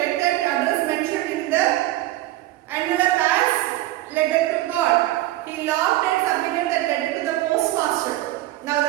that address mentioned in the envelope as letter to God. He locked and submitted that letter to the postmaster. Now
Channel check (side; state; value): left; quieter; 16.2 dB